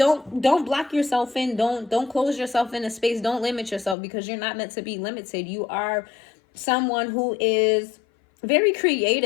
block yourself in. Don't close yourself in a space. Don't limit yourself, because you're not meant to be limited. You are someone who is very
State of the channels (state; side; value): drops out; right; at 4.0 s